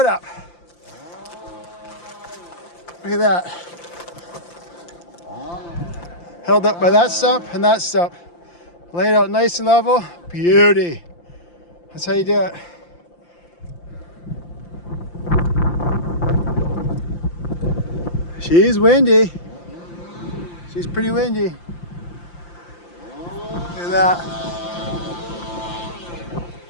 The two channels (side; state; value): right; late; 5.8 ms